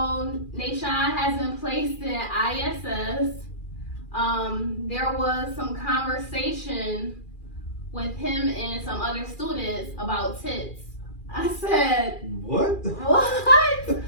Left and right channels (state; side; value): late; right; 2.4 ms